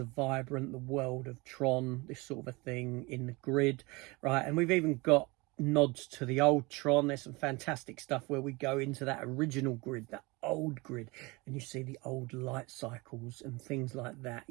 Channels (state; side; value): quieter; left; 25.0 dB